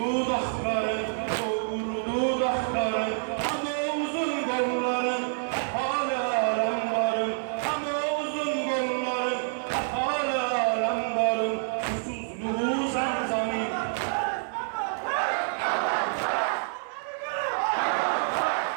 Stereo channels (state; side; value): silent; left; 60 dB below the other